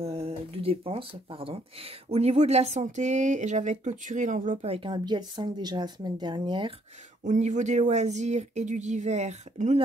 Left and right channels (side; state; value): both; normal; correlation 0.68